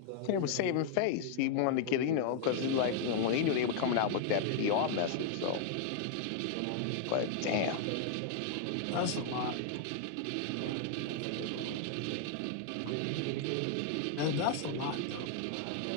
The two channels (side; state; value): both; different; correlation 0.00